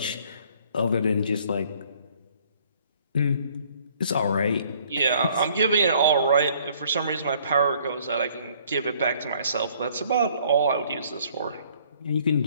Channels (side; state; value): both; inverted; correlation -0.60